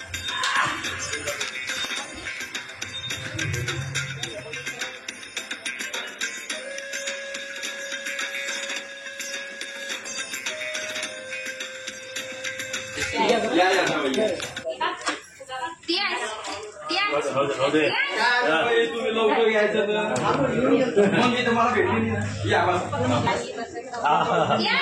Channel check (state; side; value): identical; both; correlation 1.00